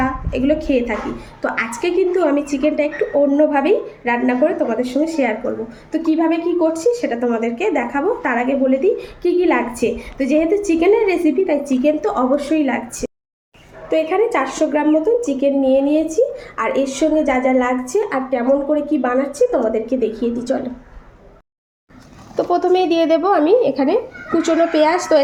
এগুলো খেয়ে থাকি। তো আজকে কিন্তু আমি চিকেনটা একটু অন্যভাবেই রান্না করে তোমাদের সঙ্গে শেয়ার করব। তো কিভাবে কি করছি সেটা তোমাদেরকে দেখাবো। তার আগে বলে দিই কী কী লাগছে। তো যেহেতু চিকেনের রেসিপি, তাই চিকেন তো অবশ্যই লাগছে। তো এখানে 400 গ্রাম মতন চিকেন নিয়ে নিয়েছি, আর এর সঙ্গে যা যা লাগছে আর কেমন করে কি বানাচ্ছি তোমাদেরকে দেখিয়ে দিই, চলো। তো প্রথমেই দিয়ে দেব আমি এখানে কুচনো পেঁয়াজ। তো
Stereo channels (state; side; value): identical; both; correlation 1.00